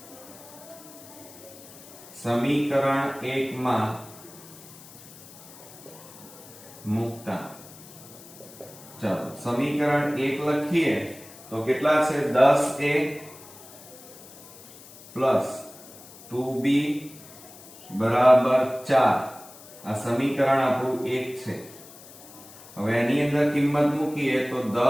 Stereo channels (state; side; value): noise; left; hiss, 19 dB below the sound